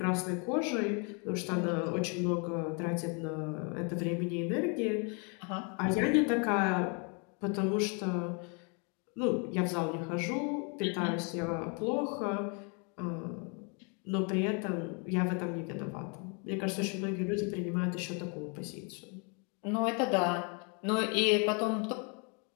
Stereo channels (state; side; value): quieter; right; 35.5 dB